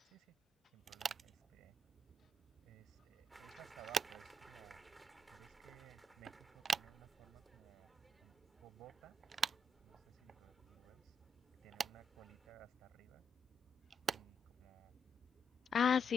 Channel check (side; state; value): both; normal; correlation 0.78